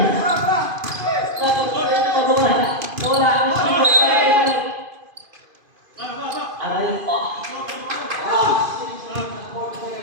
Napagpwede mo magawa. Wala ang sigot. Aray po.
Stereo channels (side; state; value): left; late; 2.5 ms